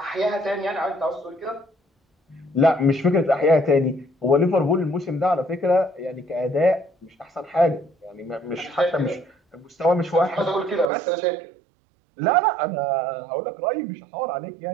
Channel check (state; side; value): drops out; left; at 10.9 s